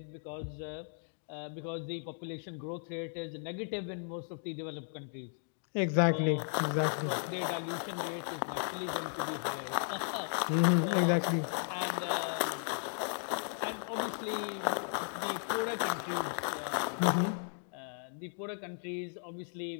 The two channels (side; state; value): right; silent; 54 dB below the other